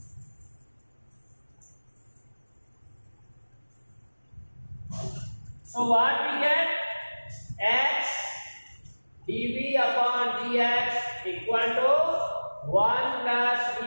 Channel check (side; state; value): both; inverted; correlation -1.00